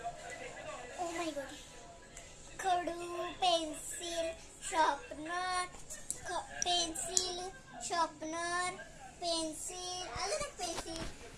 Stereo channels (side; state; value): both; identical; correlation 1.00